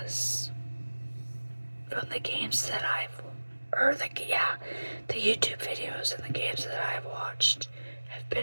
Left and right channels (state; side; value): inverted; both; correlation -1.00